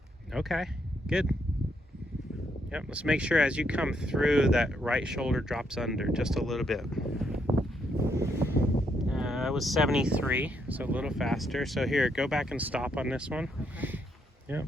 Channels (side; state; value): both; normal; correlation 0.76